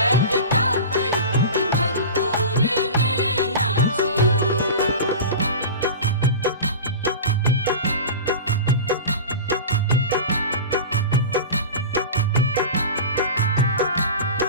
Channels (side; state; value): both; inverted; correlation -0.30